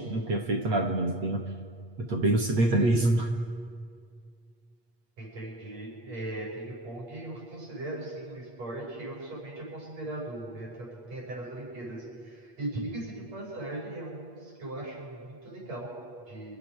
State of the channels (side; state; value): left; late; 8.4 ms